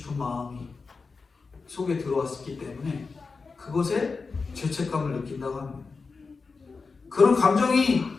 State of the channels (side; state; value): right; quieter; 4.5 dB